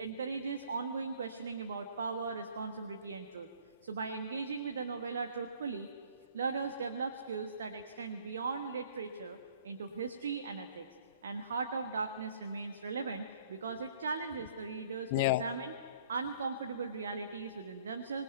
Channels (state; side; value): inverted; both; correlation -0.55